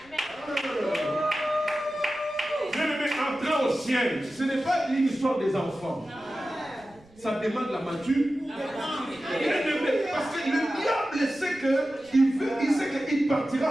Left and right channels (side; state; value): right; noise; rumble, 28 dB below the sound